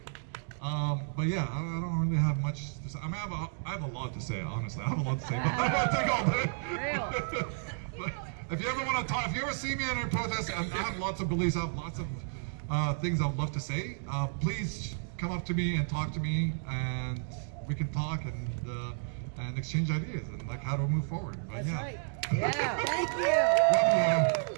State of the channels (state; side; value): silent; left; digital silence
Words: But yeah, I don't really have much to say. I mean, I have a lot to say, honestly. I have a lot to say, but I don't want to take all day. But if you ever want to talk, if you ever see me in a protest, I have lots of beliefs, I have lots of things I would love to say. Please come up to me and talk to me, and we can talk and exchange ideas and like how to move forward. But, That's yeah. right. Yeah, thank you. Love